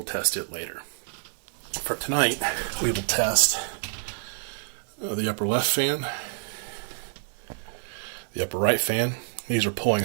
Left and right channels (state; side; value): silent; left; 59 dB below the other